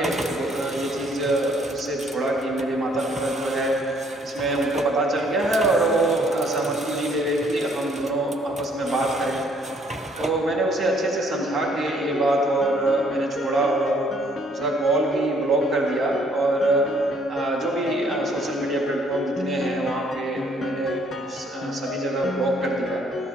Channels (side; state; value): both; normal; correlation 0.64